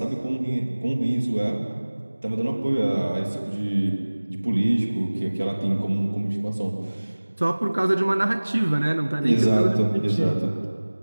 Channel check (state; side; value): inverted; both; correlation -1.00